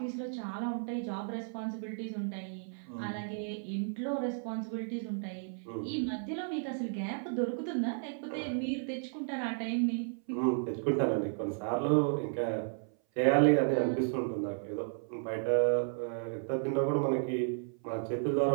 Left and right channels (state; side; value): silent; left; 55 dB below the other